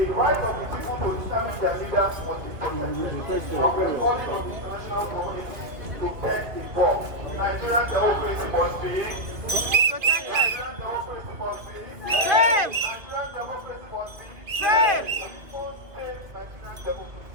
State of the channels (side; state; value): left; late; 2.5 ms